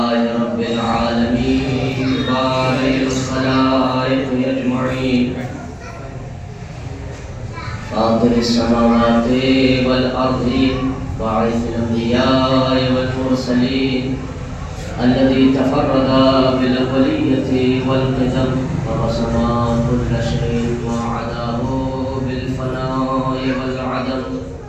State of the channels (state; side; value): identical; both; correlation 1.00